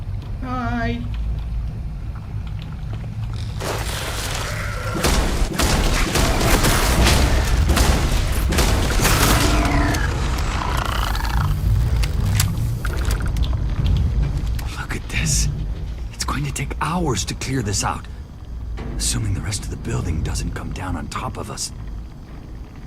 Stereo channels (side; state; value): both; identical; correlation 1.00